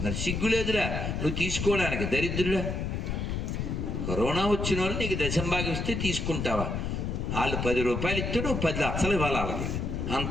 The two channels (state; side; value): noise; left; rumble, 2 dB below the sound